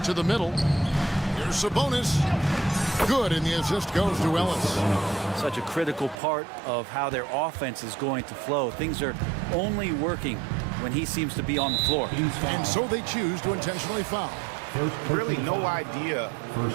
to the middle. Here's Sabonis. Good, and the assist goes to Ellis. Such a critical part of how their offense is going to flow. Things are only working when he seems to be on the floor. And so they choose to intentionally foul. Really no idea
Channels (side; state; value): left; drops out; at 6.2 s